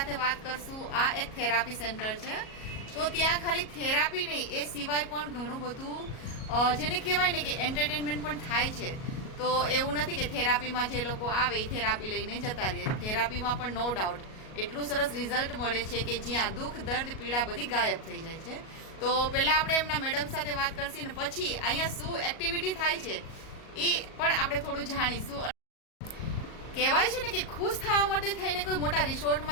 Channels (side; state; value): right; late; 37 ms